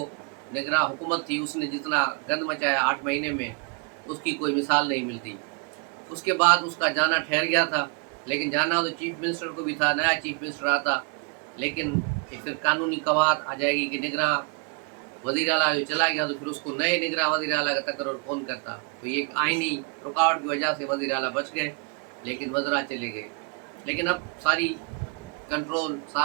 निगरान हुकूमत थी उसने जितना गंद मचाया 8 महीने में, उसकी कोई मिसाल नहीं मिलती। उसके बाद उसका जाना ठहर गया था, लेकिन जाना तो चीफ मिनिस्टर को भी था, नया चीफ मिनिस्टर आता, लेकिन फिर कानूनी कवायद आ जाएगी कि निगरान वज़ीर आला जो चला गया तो फिर उसको नए निगरान वज़ीर आला का तकर्रुर कौन करता। तो ये आइनी रुकावट की वजह से वज़ीर आला बच गए, लेकिन वज़रा चले गए। लेकिन अब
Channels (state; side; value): quieter; left; 33.3 dB